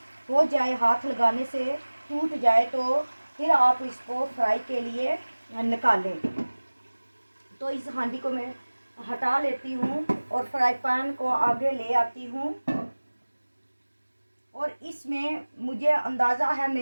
हो जाए, हाथ लगाने से टूट जाए, तो फिर आप इसको फ्राई के लिए निकालें। तो इस हांडी को मैं हटा लेती हूँ और फ्राई पैन को आगे ले आती हूँ। और इसमें मुझे अंदाज़ा है,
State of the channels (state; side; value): inverted; both; correlation -1.00